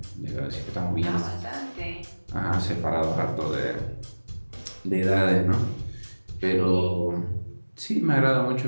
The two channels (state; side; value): inverted; both; correlation -1.00